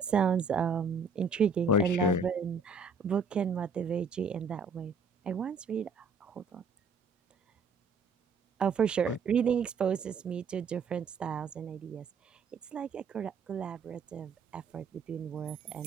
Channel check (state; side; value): quieter; left; 4.4 dB